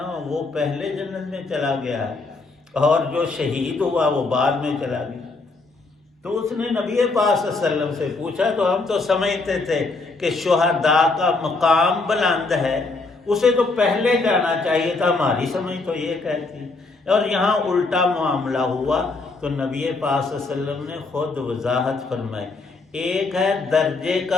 وہ پہلے جنت میں چلا گیا ہے، اور جو شہید ہوا وہ بعد میں چلا گیا۔ تو اس نے نبی پاک صلی اللہ علیہ وسلم سے پوچھا، تو ہم تو سمجھتے تھے کہ شہداء کا مقام بلند ہے، اسے تو پہلے جانا چاہیے تھا، ہماری سمجھ تو یہ کہتی، اور یہاں الٹا معاملہ ہوا۔ تو نبی پاک صلی اللہ علیہ وسلم نے خود وضاحت فرمائی، ایک ہے درجے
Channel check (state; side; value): quieter; right; 3.6 dB